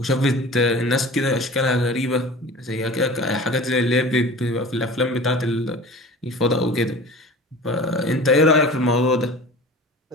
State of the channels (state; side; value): normal; both; correlation 0.38